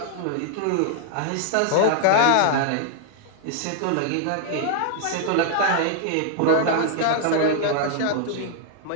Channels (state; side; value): different; both; correlation -0.01